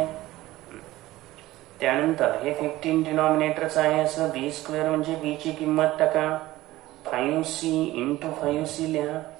त्यानंतर हे 15 डिनॉमिनेटरच आहे असं बी स्क्वेअर म्हणजे बी ची किंमत टाका. 5c इंटू 5c लिहा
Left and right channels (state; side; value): quieter; left; 16.8 dB